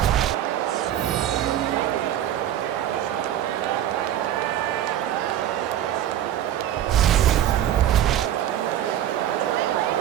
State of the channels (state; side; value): quieter; left; 11.5 dB